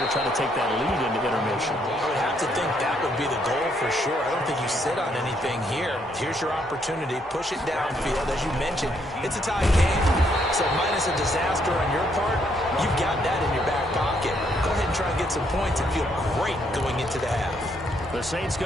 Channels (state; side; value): normal; both; correlation 0.72